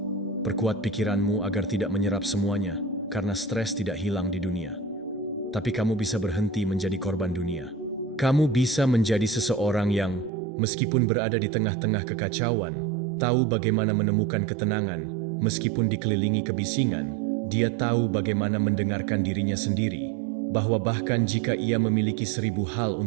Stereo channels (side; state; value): left; drops out; at 10.3 s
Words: Perkuat pikiranmu agar tidak menyerap semuanya, karena stres tidak hilang di dunia. Tapi kamu bisa berhenti menjadi korban dunia. Kamu bisa menjadi seseorang yang, meskipun berada di tengah-tengah kekacauan, tahu bagaimana menemukan ketenangan, meskipun dikelilingi kebisingan. Dia tahu bagaimana mendengarkan dirinya sendiri, bahwa bahkan jika ia memiliki 1000 hal